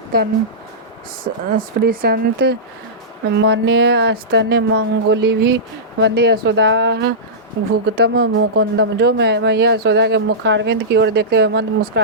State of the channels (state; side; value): normal; both; correlation -0.16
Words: स्पृशंत मन्य स्तन्य मंगुलिभि वंदे यशोदाः भुगतम मुकुंदम। जो मैया यशोदा के मुखारविंद की ओर देखते हुए मंद